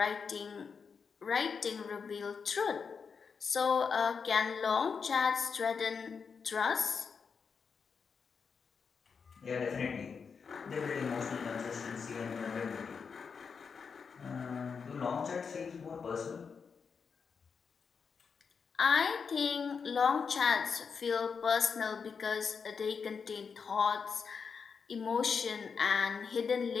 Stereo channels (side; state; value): right; quieter; 5.8 dB